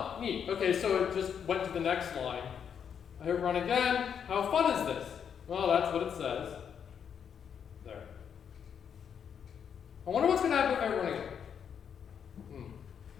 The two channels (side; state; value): right; quieter; 7.7 dB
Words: neat. Okay, so it just went to the next line. I hit run again. How fun is this? Well, that's what it says. There. I wonder what's going to happen if I run again.